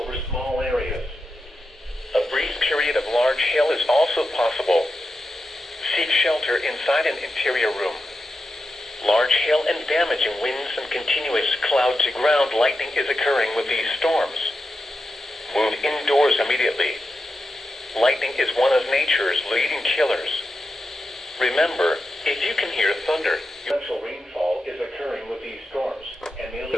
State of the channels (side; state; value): both; normal; correlation 0.89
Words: small areas. A brief period of large hail is also possible. Seek shelter inside an interior room. Large hail and damaging winds and continuous cloud-to-ground lightning is occurring with these storms. Move indoors immediately. Lightning is one of nature's leading killers. Remember, If you can hear thunder, torrential rainfall is occurring with these storms and